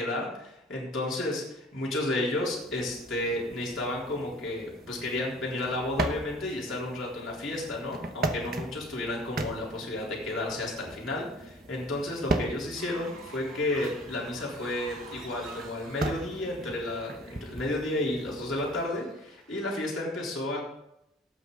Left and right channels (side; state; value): both; normal; correlation 0.48